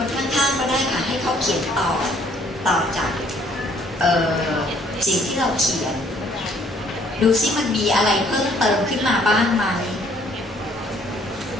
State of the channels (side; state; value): both; normal; correlation 0.62